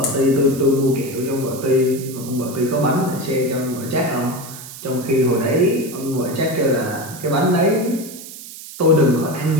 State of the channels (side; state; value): right; noise; hiss, 14 dB below the sound